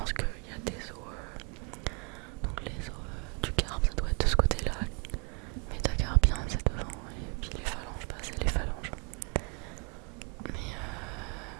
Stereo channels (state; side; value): quieter; left; 34.7 dB